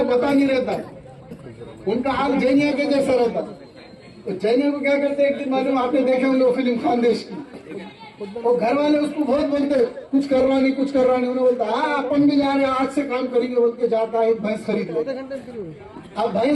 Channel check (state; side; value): identical; both; correlation 1.00